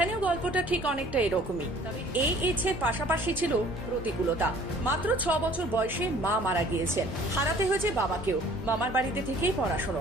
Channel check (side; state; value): both; normal; correlation 0.53